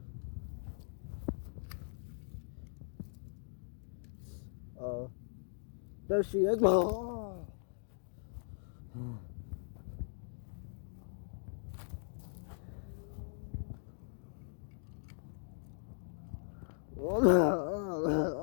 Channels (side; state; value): right; silent; digital silence